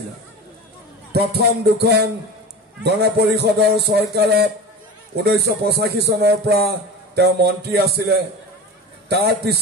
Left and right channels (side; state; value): both; normal; correlation 0.31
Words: প্ৰথম দুখন গণপৰিষদৰ চৰকাৰত 1985 চনৰ পৰা তেওঁ মন্ত্ৰী আছিলে। তাৰ